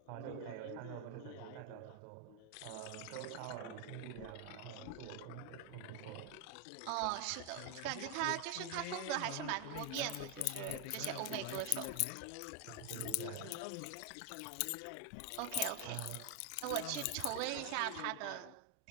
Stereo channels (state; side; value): different; both; correlation 0.01